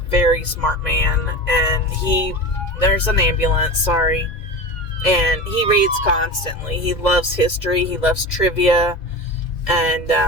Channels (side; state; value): right; late; 2.0 ms